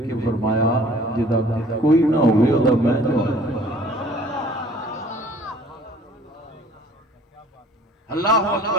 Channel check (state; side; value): normal; both; correlation 0.53